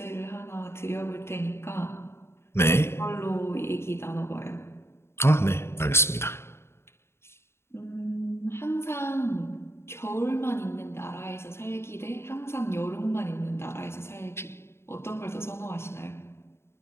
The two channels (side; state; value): right; late; 0.12 ms